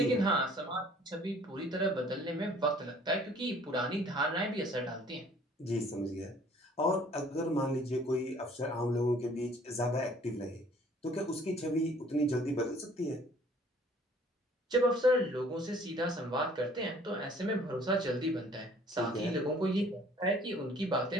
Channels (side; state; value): both; normal; correlation 0.55